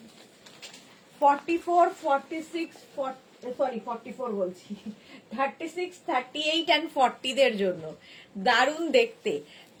44, 46, 44 বলছি, 36, 38 and 40 দের জন্য দারুন দেখতে।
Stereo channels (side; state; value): both; identical; correlation 1.00